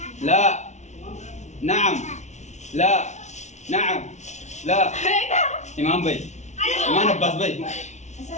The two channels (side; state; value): right; late; 0.33 ms